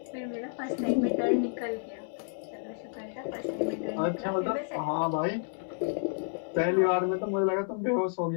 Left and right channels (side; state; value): right; silent; digital silence